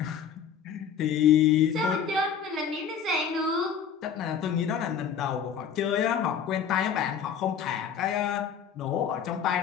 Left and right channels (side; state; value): right; quieter; 7.5 dB